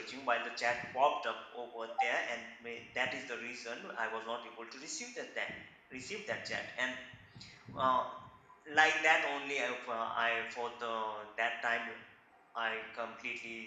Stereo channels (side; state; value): both; identical; correlation 1.00